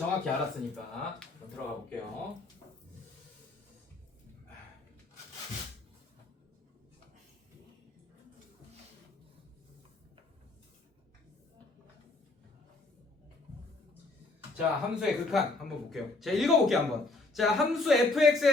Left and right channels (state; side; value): quieter; right; 3.3 dB